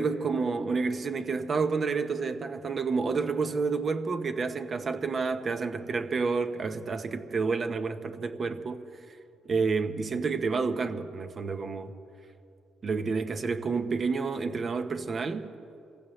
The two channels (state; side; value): quieter; left; 4.2 dB